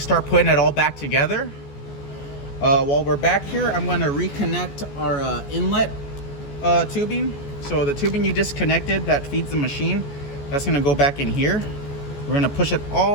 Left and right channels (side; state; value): right; late; 14 ms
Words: putting it all back together. While we're back here, I'm going to reconnect our inlet tubing. So the tubing you disconnected that feeds the machine, that's going to go back in here. We're going to push it